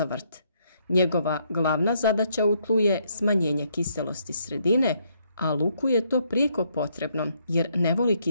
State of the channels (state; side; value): inverted; both; correlation -0.72